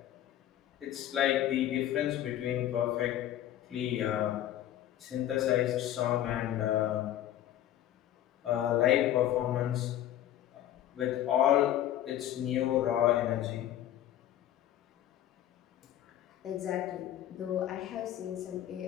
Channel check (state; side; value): quieter; right; 12.2 dB